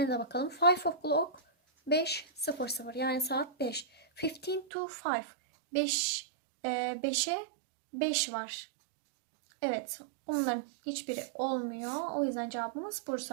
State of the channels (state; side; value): drops out; left; at 4.7 s